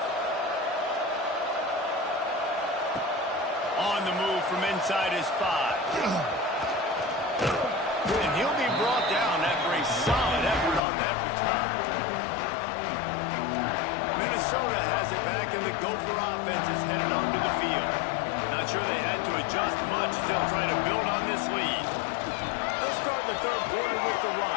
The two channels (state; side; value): drops out; right; at 10.8 s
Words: On the move from inside his 5. And he'll be brought down after a solid effort on that return. Minnesota has it back, and the Gopher offense is headed onto the field. Not sure they had to adjust much as they'll try to build on this lead. Let's start the 3rd quarter with the